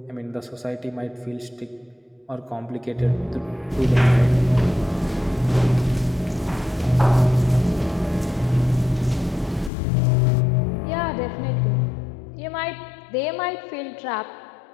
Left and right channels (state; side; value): drops out; right; at 9.7 s